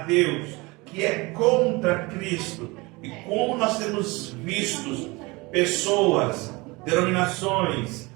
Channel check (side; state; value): left; quieter; 24.3 dB